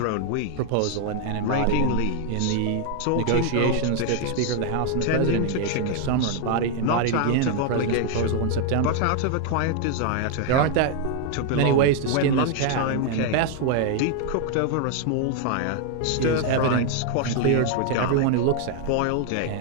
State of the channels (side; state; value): both; different; correlation 0.00